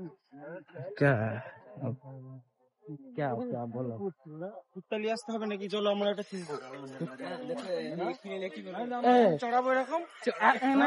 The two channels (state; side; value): identical; both; correlation 1.00